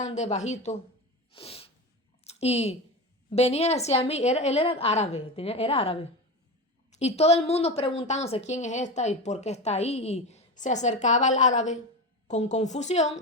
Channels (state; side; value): normal; both; correlation 0.23